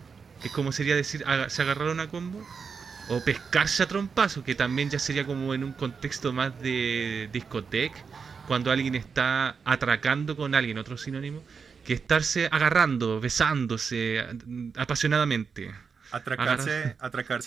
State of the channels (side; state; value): left; quieter; 5.7 dB